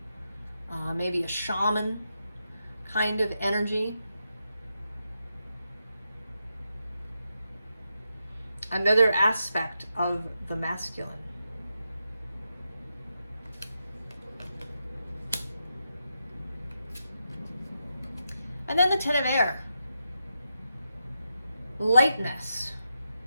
maybe a shaman kind of energy. Another aspect of the masculine. And then the Ten of Air. Lightness.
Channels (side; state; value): both; inverted; correlation -0.86